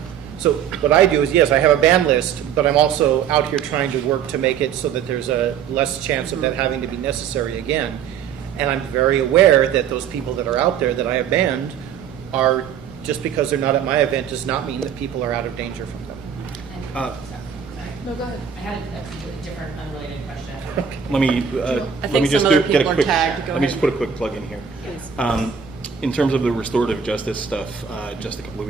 So what I do is, yes, I have a ban list, but I'm also out here trying to work to make it so that there's a less chance of that having to be necessary again. And I'm very aware that those people that are out there that I have banned are, just because they're not at my event does not mean that people are out of danger from them. Sorry. No, go ahead. I had a completely different, unrelated question. Let me I let think me just some other get a people are quick. tagged. Go Let me ahead. just put a quick plug in here. Please. In terms of the restorative justice stuff, just a couple of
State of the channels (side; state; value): left; quieter; 7.9 dB